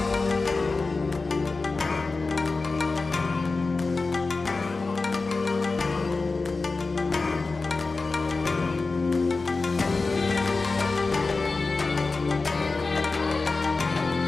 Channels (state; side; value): quieter; right; 3.8 dB